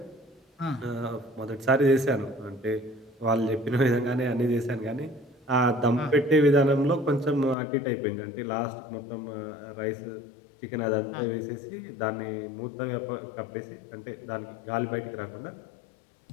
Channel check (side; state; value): right; drops out; at 7.6 s